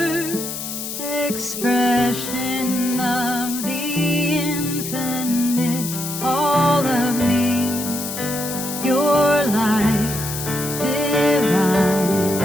expression of the infinite. All of me, your light divine.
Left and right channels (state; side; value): noise; left; hiss, 6 dB below the sound